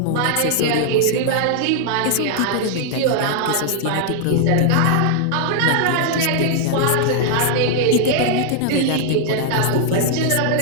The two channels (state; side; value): different; both; correlation 0.00